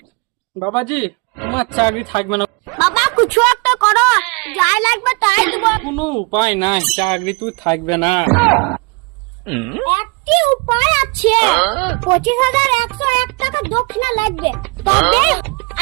বাবাজি, তোমার চাকরি থাকবে না। বাবা কিছু একটা করো, যাই লাগবে তাই দিব। কোনো উপায় নাই, চাকরি তুই থাকবে না। একটি উপায় আছে, 25,101 টাকা দক্ষিণা লাগবে। তবে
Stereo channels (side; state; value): left; quieter; 30.4 dB